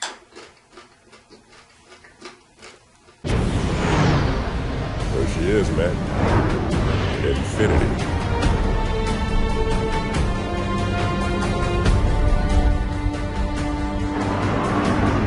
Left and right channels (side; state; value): both; identical; correlation 1.00